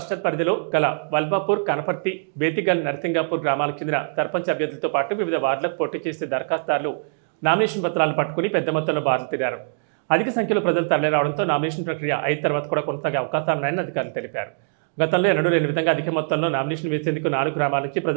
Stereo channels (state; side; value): silent; left; digital silence